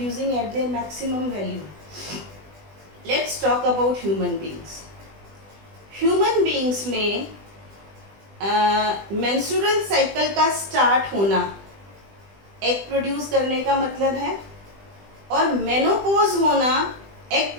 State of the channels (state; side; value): late; left; 20 ms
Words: at their maximum value? Let's talk about human beings. Human beings में menstrual cycle का start होना egg produce करने का मतलब है, और menopause होना egg